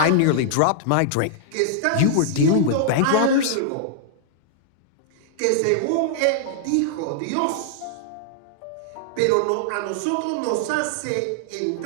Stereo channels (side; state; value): both; different; correlation -0.01